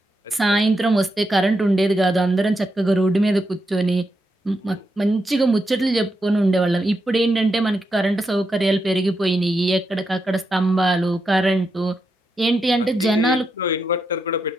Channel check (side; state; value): both; normal; correlation 0.84